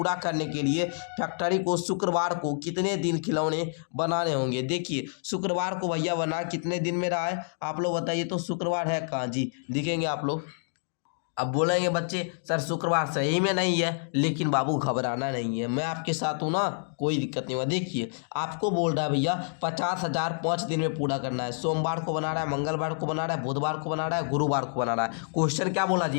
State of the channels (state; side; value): silent; right; digital silence